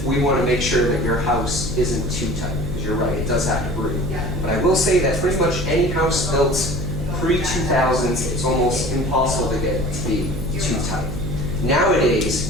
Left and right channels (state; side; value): noise; right; hum, 6 dB below the sound